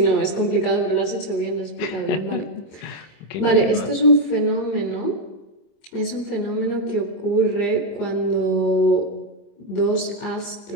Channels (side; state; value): right; late; 25 ms